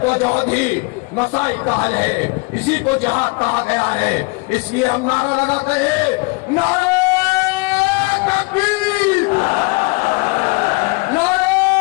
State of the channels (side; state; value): right; quieter; 28.4 dB